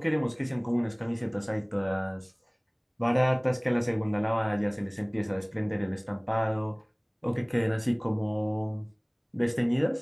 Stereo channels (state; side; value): identical; both; correlation 1.00